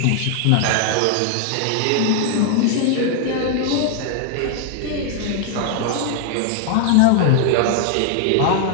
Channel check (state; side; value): different; both; correlation 0.00